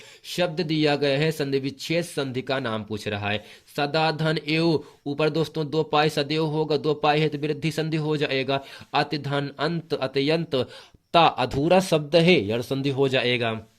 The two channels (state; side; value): identical; both; correlation 1.00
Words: शब्द दिया गया है, संधि विच्छेद संधि का नाम पूछ रहा है। सदा धन एव, ऊपर दोस्तों दो पाई सदैव होगा, दो पाई है तो वृद्धि संधि हो जाएगा। अति धन अंत अत्यंत, ता अधूरा शब्द है, यड़ संधि हो जाएगा।